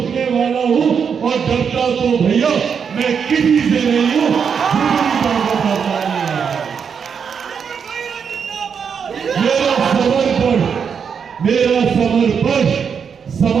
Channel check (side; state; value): left; quieter; 6.7 dB